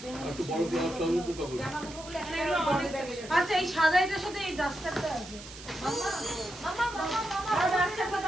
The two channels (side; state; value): right; noise; hiss, 15 dB below the sound